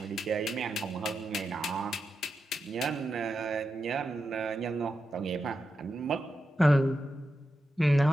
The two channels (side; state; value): both; normal; correlation 0.88